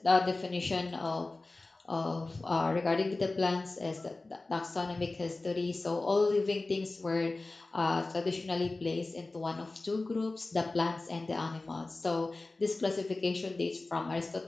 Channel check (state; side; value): quieter; right; 3.2 dB